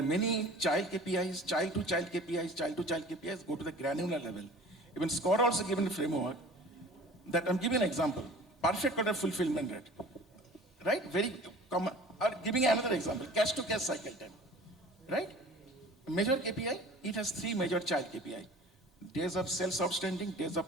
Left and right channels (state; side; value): normal; both; correlation 0.44